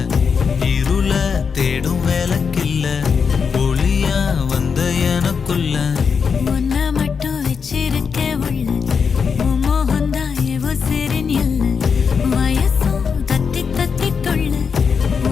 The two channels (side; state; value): right; quieter; 6.0 dB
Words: இருள தேடும் வேலைக்கில்ல ஒளியா வந்த எனக்குள்ள உன்னை மட்டும் வச்சிருக்க உள்ள மோகந்தான் எவோ சிறின் இல்ல வயசும் கத்தி கத்தி கொள்ள